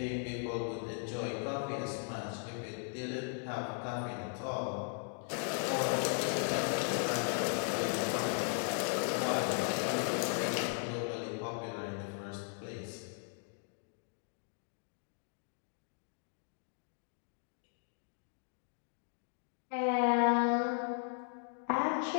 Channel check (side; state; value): right; silent; 53 dB below the other